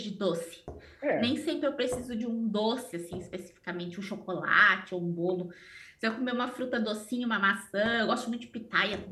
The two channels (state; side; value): identical; both; correlation 1.00